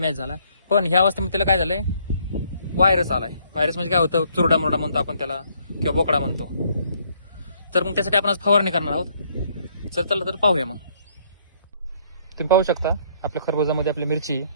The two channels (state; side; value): inverted; both; correlation -0.66